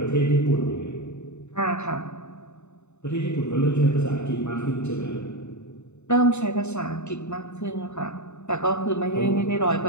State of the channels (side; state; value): right; late; 0.82 ms